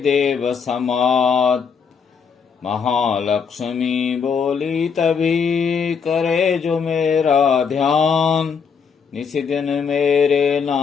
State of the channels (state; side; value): quieter; right; 6.1 dB